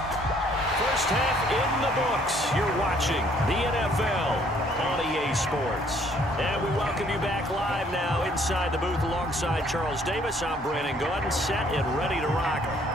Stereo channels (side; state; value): both; normal; correlation 0.63